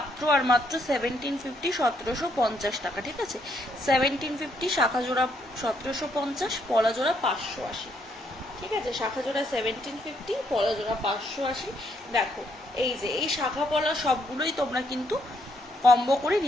আর মাত্র 1750, 1750 টাকা। ঠিক আছে, 1750 শাখা জোড়া, 1750 পলা জোড়া 580। ঠিক আছে, শাখা জোড়া 1750, পলা জোড়া 580। দেখো এই যে এই শাখা পলা সবগুলোই তোমরা কিন্তু কম্বো করে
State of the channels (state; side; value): normal; both; correlation 0.73